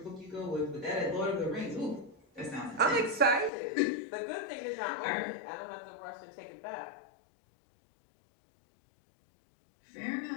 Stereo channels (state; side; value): drops out; right; at 3.5 s